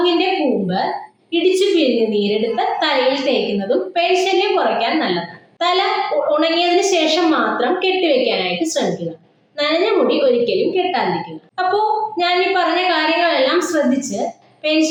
കൂമ്പ് ഇടിച്ചു പിഴിഞ്ഞ് നീരെടുത്ത് തലയിൽ തേക്കുന്നതും പേൻശല്യം കുറയ്ക്കാൻ നല്ലതാണ്. തല ഉണങ്ങിയതിന് ശേഷം മാത്രം കെട്ടിവെക്കാനായിട്ട് ശ്രമിക്കുക. നനഞ്ഞ മുടി ഒരിക്കലും കെട്ടാതിരിക്കുക. അപ്പോ ഞാൻ ഈ പറഞ്ഞ കാര്യങ്ങളെല്ലാം ശ്രദ്ധിച്ച്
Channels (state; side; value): identical; both; correlation 1.00